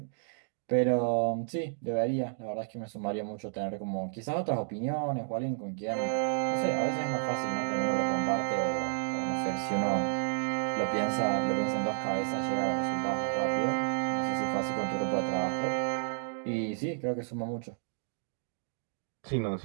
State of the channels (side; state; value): left; silent; digital silence